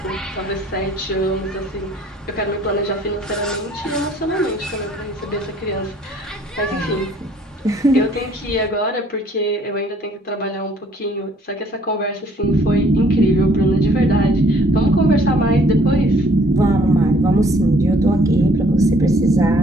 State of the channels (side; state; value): both; normal; correlation 0.60